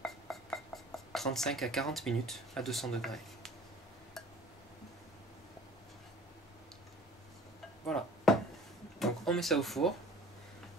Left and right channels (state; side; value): noise; left; rumble, 28 dB below the sound